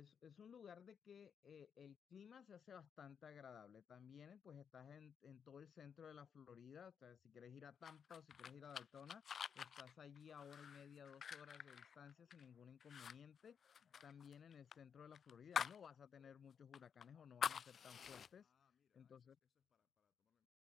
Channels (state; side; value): quieter; right; 7.2 dB